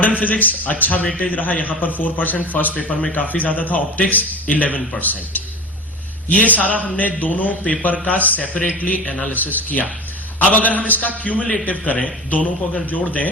physics अच्छा वेटेज रहा, यहां पर 4%, फर्स्ट पेपर में काफी ज्यादा था। ऑप्टिक्स 11%। ये सारा हमने दोनों पेपर का सेपरेटली एनालिसिस किया। अब अगर हम इसका क्यूमुलेटिव करें, दोनों को अगर जोड़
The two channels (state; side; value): normal; both; correlation 0.31